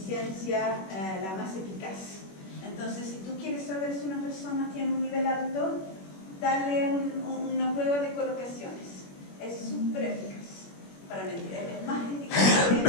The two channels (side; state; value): right; late; 21 ms